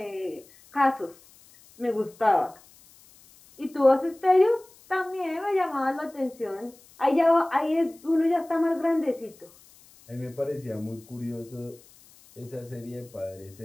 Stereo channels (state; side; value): noise; left; hiss, 26 dB below the sound